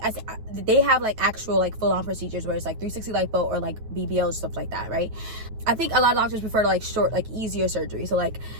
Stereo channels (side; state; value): left; late; 9.2 ms